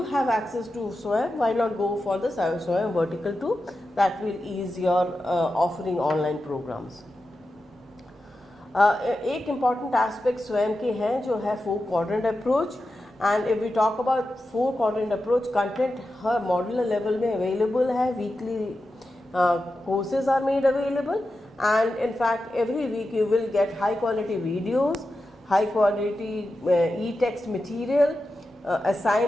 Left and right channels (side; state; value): both; normal; correlation 0.91